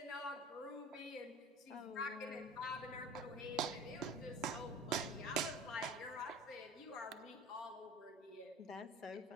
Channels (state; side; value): normal; both; correlation 0.40